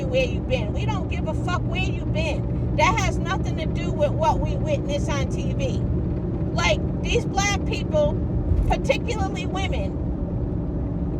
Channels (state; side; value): identical; both; correlation 1.00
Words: where you've been. We don't give a fuck where you've been. That has nothing to do with what we witness on TV. Like, these black people, particularly women,